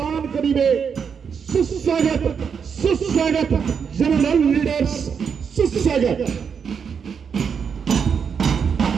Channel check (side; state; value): left; quieter; 6.6 dB